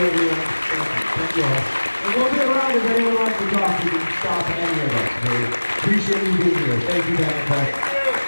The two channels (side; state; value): both; inverted; correlation -1.00